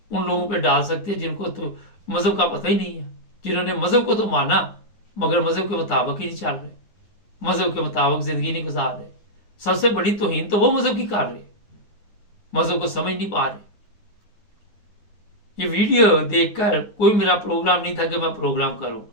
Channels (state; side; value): late; right; 9.6 ms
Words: उन लोगों पे डाल सकते हैं जिनको तो मज़हब का पता ही नहीं है, जिन्होंने मज़हब को तो माना मगर मज़हब के मुताबिक ही नहीं चल रहे, मज़हब के मुताबिक ज़िंदगी नहीं गुजार रहे। सबसे बड़ी तौहीन तो वो मज़हब की कर रहे, मज़हब को समझ नहीं पा रहे। ये वीडियो देखकर कोई मेरा प्रोग्राम नहीं था कि मैं प्रोग्राम करूं।